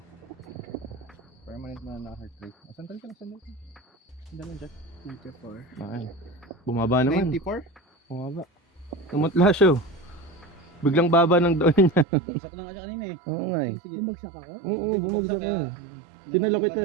Permanent mo na heart rate. Sandal ka lang, sandal ka. Sandal lang dyan. 94. Ay. Bumaba naman. 94? Bumaba. Tumutla siya. Oh. Biglang baba ng doon niya. Bumagsak na nga siya kanina eh. Oo nga eh. Sige. Bumagsak ako? Oo, bumagsak ka. kaya- Tinalo kita.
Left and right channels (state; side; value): drops out; left; at 12.1 s